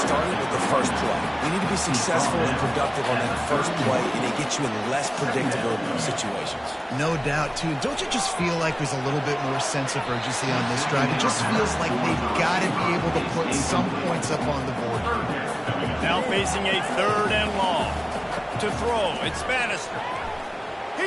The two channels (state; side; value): identical; both; correlation 1.00